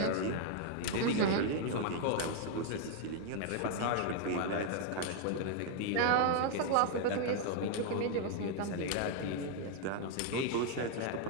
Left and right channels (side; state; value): both; different; correlation 0.00